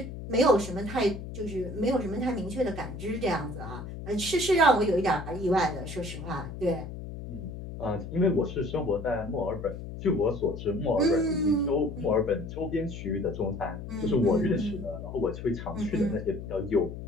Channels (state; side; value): noise; left; hum, 9 dB below the sound